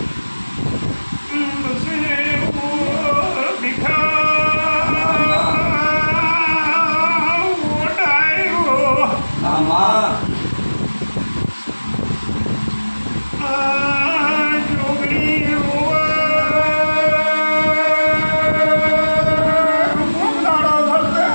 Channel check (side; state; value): both; inverted; correlation -1.00